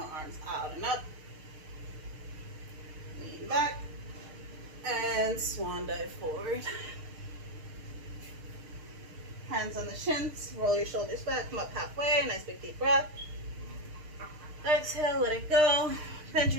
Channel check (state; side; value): late; left; 6.6 ms